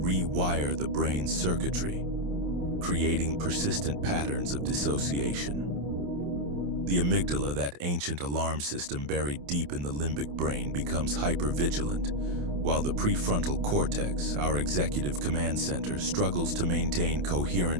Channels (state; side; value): late; left; 28 ms